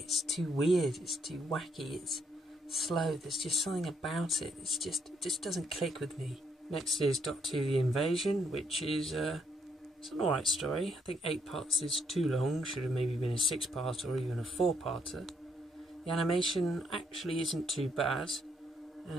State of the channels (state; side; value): normal; both; correlation 0.73